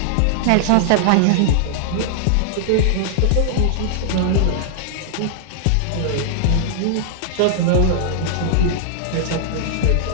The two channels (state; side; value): different; both; correlation -0.01